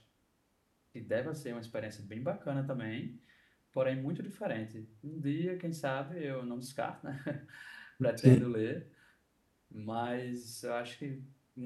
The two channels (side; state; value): both; identical; correlation 1.00